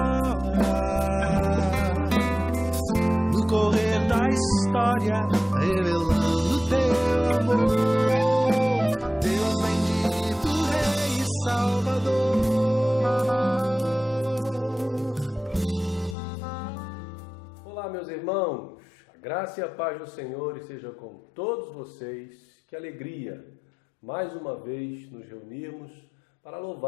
no correr da história, revelando teu amor, Deus bendito, Rei e Salvador. Olá, meus irmãos, a graça e a paz do Senhor esteja com todos vocês. Que alegria, mais uma vez, nos reunirmos para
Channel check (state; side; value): drops out; right; at 16.2 s